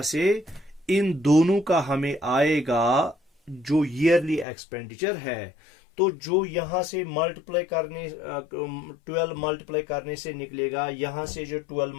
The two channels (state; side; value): drops out; right; at 4.5 s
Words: से इन दोनों का हमें आएगा जो ईयरली एक्सपेंडिचर है। तो जो यहां से मल्टीप्लाई करने 12 मल्टीप्लाई करने से निकलेगा, यहां से जो 12